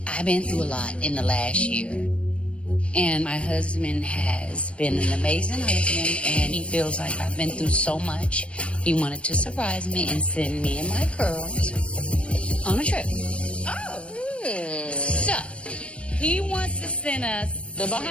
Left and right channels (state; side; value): late; right; 0.061 ms